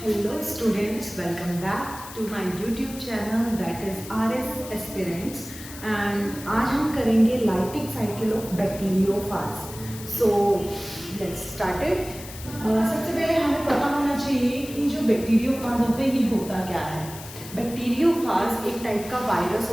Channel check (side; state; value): left; noise; hiss, 14 dB below the sound